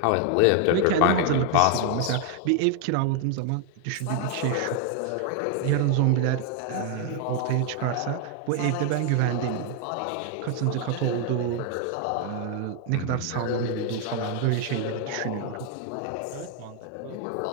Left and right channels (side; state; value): both; different; correlation 0.00